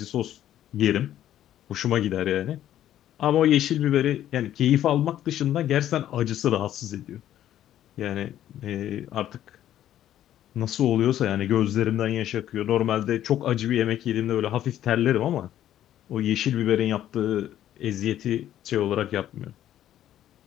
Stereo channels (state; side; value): quieter; right; 11.9 dB